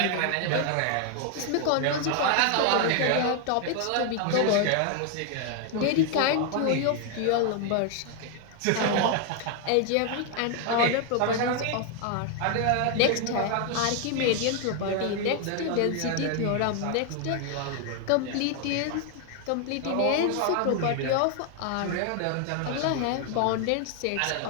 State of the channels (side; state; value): both; different; correlation 0.00